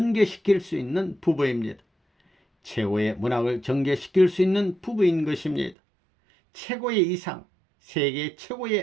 수 있는 부부입니다. 최고의 문학을 전개시킬 수 있는 부부인 것입니다. 최고의 이상, 세계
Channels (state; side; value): drops out; left; at 5.8 s